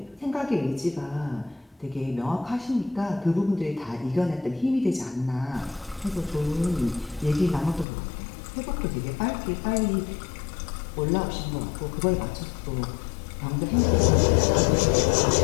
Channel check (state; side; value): drops out; right; at 7.9 s